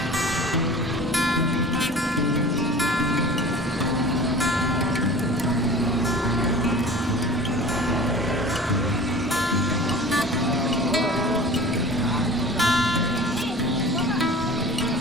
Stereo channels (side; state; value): both; normal; correlation 0.41